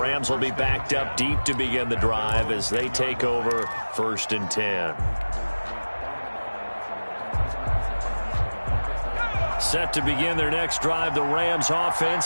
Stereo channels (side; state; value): both; inverted; correlation -1.00